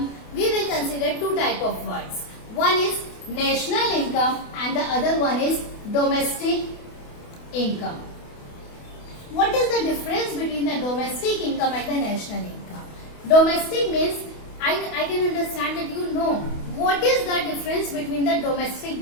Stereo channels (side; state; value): right; late; 28 ms